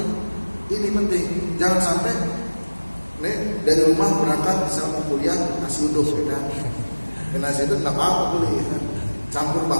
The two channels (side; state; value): both; inverted; correlation -1.00